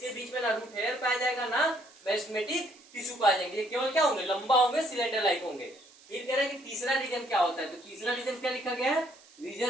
बीच में ना रूट हेयर पाया जाएगा ना मेरिस्टेमेटिक टिश्यू पाए जाएंगे, ये केवल क्या होंगे, लंबा होंगे, सिलेंडर लाइक होंगे। फिर कह रहे हैं कि तीसरा रीजन क्या होता है, तो तीसरा रीजन क्या लिखा गया है,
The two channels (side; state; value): right; noise; hiss, 25 dB below the sound